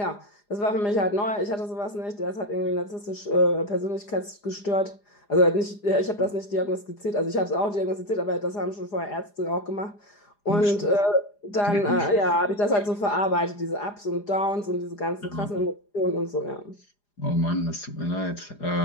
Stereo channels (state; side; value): late; right; 4.9 ms